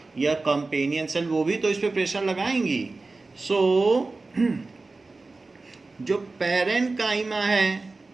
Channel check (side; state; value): left; quieter; 3.5 dB